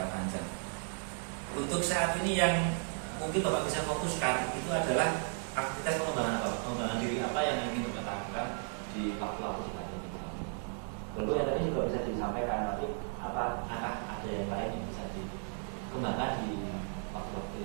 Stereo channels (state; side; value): silent; left; 55 dB below the other